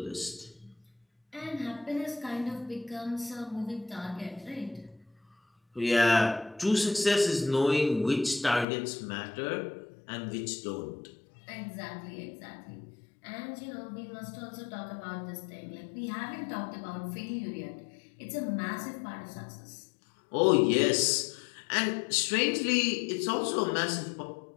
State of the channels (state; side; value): drops out; right; at 8.7 s